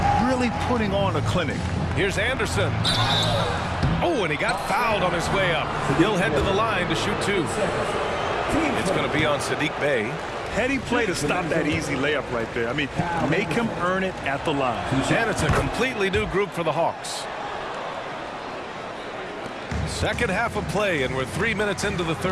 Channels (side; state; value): both; identical; correlation 1.00